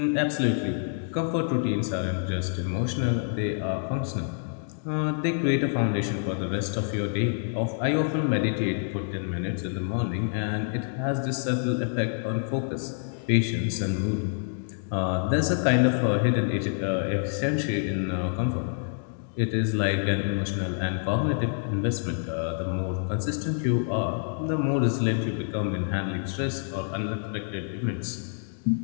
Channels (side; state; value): right; silent; digital silence